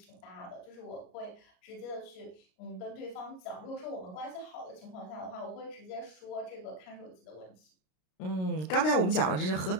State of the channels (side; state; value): right; late; 33 ms